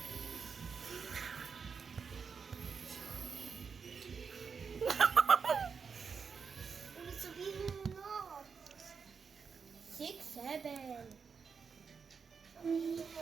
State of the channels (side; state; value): left; quieter; 5.8 dB